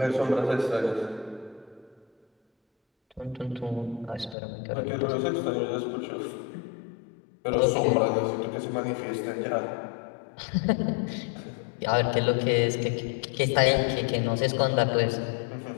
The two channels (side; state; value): right; drops out; at 4.4 s